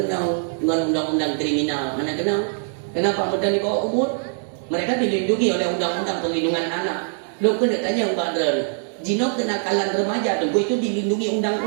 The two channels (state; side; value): silent; left; digital silence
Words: dengan undang-undang kriminal. Anak kenal. Kenapa muda di bawah umur? Mereka dilindungi oleh undang-undang perlindungan anak. Lo kena tanya Mbak Dren. Jino kenakalan remaja tu itu dilindungi